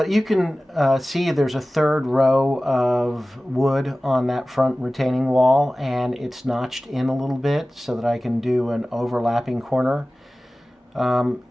you can see there's a third row of wood on that front retaining wall, and it's notched in a little bit so that I can do an overlapping corner. In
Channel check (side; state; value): both; normal; correlation 0.97